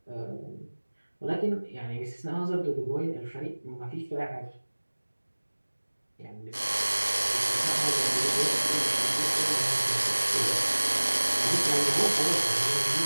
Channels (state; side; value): inverted; both; correlation -1.00